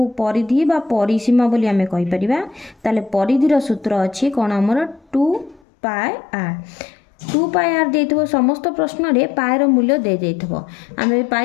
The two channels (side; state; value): right; drops out; at 5.6 s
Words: परिधि बा परिसीमा बोली आमे कहि परिबा। ताले परिधिर सूत्र अच्छी कौन आमर 2πr 2πr देइथबो समस्त प्रश्न रे पायर मूल्य दे देइथबो। आमे